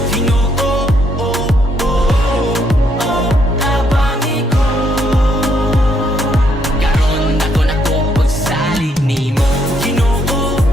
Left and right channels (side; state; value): both; normal; correlation 0.72